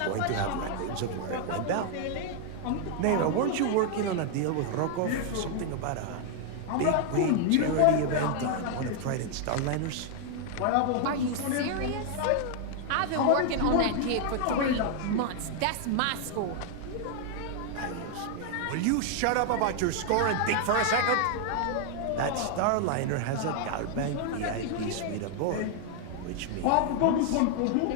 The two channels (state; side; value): different; both; correlation 0.00